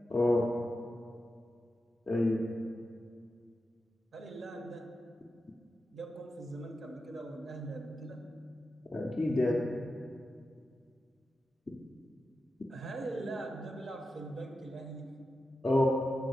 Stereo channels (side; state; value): both; normal; correlation 0.90